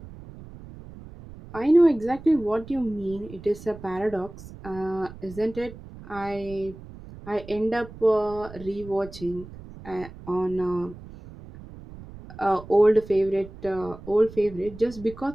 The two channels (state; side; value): noise; right; rumble, 16 dB below the sound